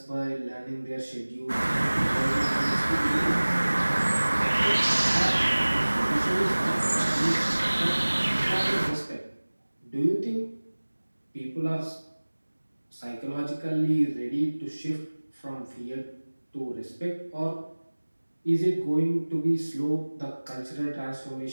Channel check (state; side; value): inverted; both; correlation -1.00